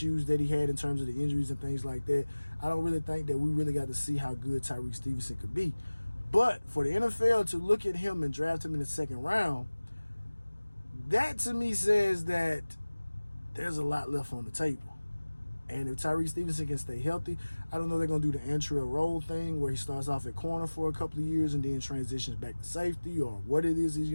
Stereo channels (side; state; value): both; inverted; correlation -1.00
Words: that he had in terms of the injuries and things like that, I don't really think that we really got to see how good Tyrique Stevenson could be. But for the NFL to look at him and draft him in the 2nd round, that to me says that there's a lot left on the table. And if Tyrique Stevenson can stay healthy, I don't know if they're going to do the entry role thing where he starts off at corner for a couple of years and then transitions back to safety or what it is he's